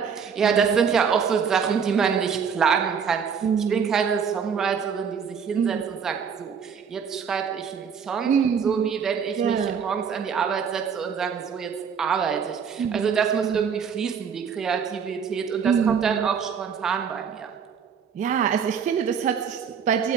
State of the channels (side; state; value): left; quieter; 6.8 dB